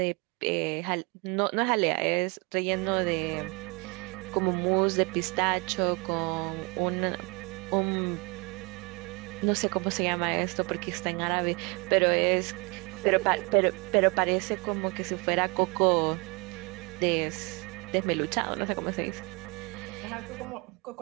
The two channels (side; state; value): left; quieter; 29.2 dB